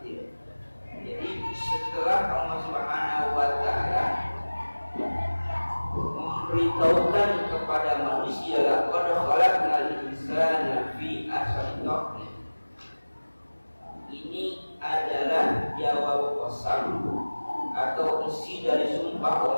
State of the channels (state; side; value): inverted; both; correlation -1.00